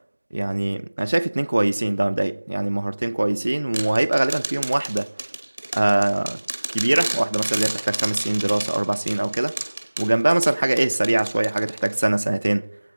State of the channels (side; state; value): both; inverted; correlation -1.00